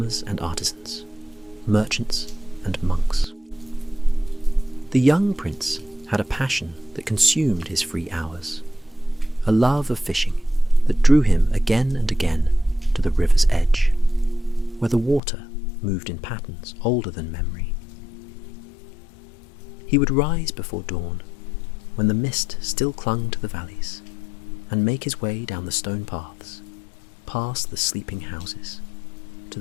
and artisans, merchants and monks. The young prince had a passion that consumed his free hours, a love of fishing that drew him again and again to the river's edge, where the water moved in patterns older than memory. He would rise before dawn, when the mist still clung to the valleys, and make his way down the stone paths, past the sleeping houses, to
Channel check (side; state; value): right; drops out; at 15.2 s